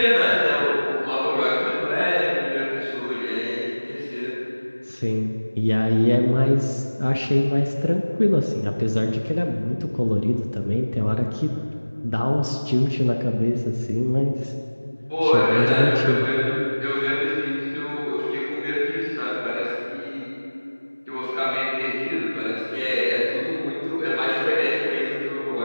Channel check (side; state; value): both; inverted; correlation -1.00